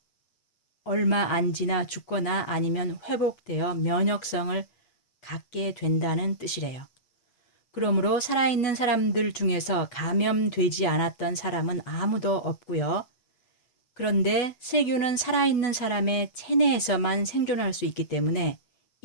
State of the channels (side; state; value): right; late; 8.2 ms